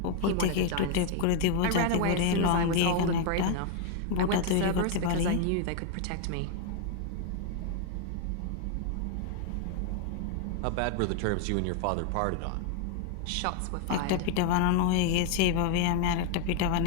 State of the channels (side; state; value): both; different; correlation 0.01